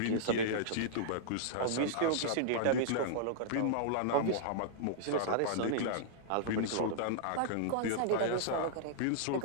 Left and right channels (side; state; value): both; different; correlation -0.02